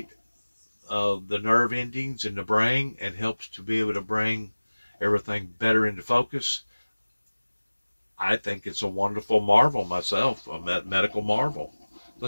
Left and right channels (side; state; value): both; inverted; correlation -1.00